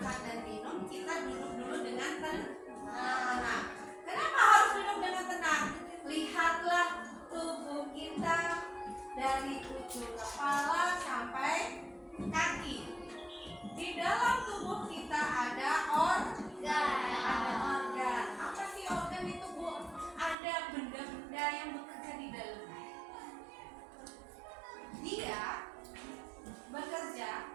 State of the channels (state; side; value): drops out; left; at 20.4 s